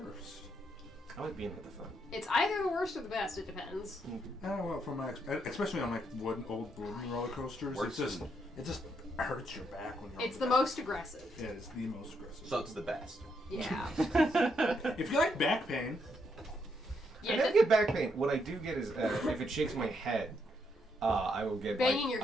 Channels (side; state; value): both; normal; correlation 0.77